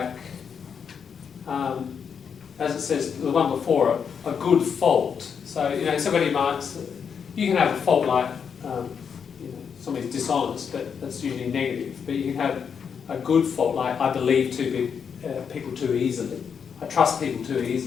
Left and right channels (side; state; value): right; quieter; 6.9 dB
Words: as it says, the one before it, a good fault. So, you know, somebody might, you can have a fault like, you know, somebody's dishonest, but that's usually negative. But you can have a good fault like, I believe people too easily. I trust people too